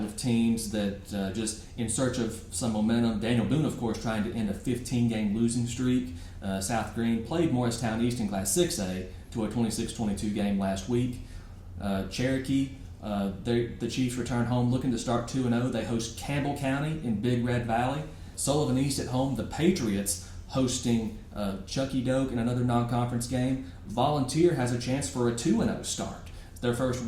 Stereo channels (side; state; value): both; identical; correlation 1.00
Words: of teams that just in search of some momentum. Daniel Boone, of course, trying to end a 15-game losing streak. South Green played Morristown East in Class 6A to a 26-22 game last week. Cherokee, the Chiefs return home looking to start 2-0. They host Campbell County in Big Red Valley. Sullivan East at home. The Patriots hosting Chucky Doak in another non-conference game. Volunteer has a chance for a 2-0 start. Their first